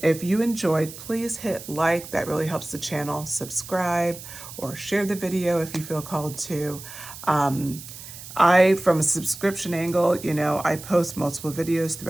If you enjoyed, please hit like. That really helps the channel. Subscribe or share the video if you feel called to. From a subscription angle, I post multiple videos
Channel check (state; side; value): noise; right; hiss, 14 dB below the sound